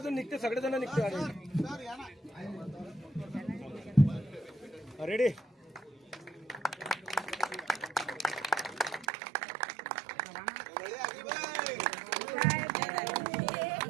निघते सगळेजण निघते. रेडी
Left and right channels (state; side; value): drops out; left; at 9.1 s